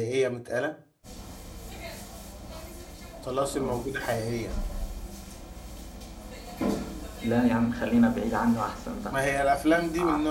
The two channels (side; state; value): both; identical; correlation 1.00